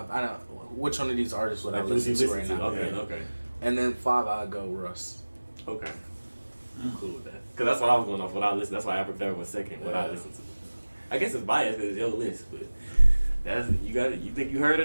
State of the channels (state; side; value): inverted; both; correlation -1.00